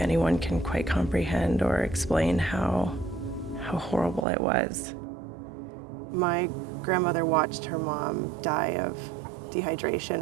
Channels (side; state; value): left; drops out; at 4.2 s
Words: can quite comprehend or explain how horrible it was. My grandmother watched her mom die of dehydration,